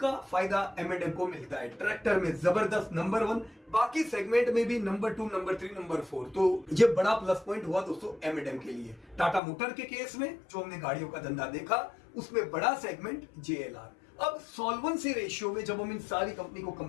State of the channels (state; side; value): drops out; right; at 9.4 s